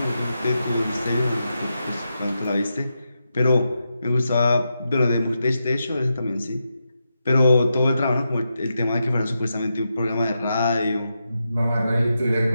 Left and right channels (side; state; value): both; inverted; correlation -0.87